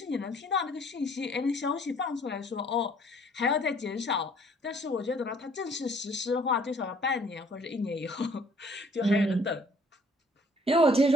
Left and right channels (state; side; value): normal; both; correlation 0.59